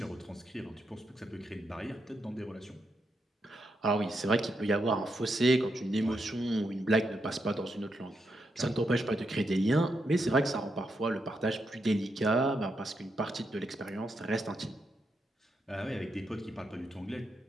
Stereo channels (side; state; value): both; normal; correlation 0.82